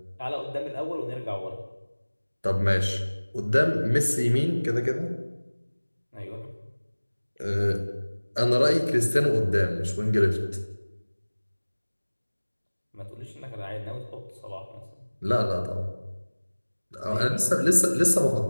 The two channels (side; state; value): both; inverted; correlation -1.00